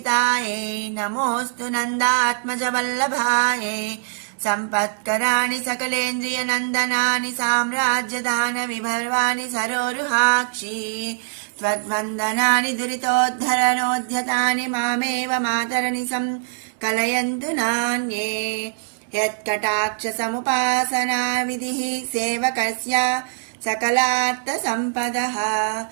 నమోస్తు నందాత్మజ వల్లభాయై సంపత్కరాణి సకలేంద్రియ నందనాని సామ్రాజ్యదాన విభర్వాణి సరోరుహాక్షి త్వద్వందనాని దురితోద్ధరణోద్యతాని మామేవ మాతరని కలయంతు నాన్యే యత్కటాక్ష సముపాసనా విధిః సేవకస్య సకలార్థ సంపదః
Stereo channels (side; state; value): left; silent; 64 dB below the other